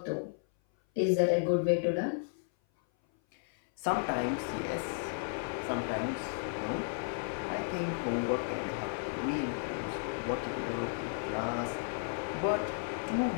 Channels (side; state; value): right; silent; 55 dB below the other